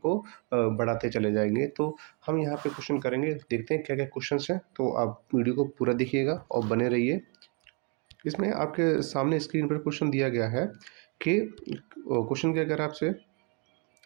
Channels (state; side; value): quieter; left; 34.3 dB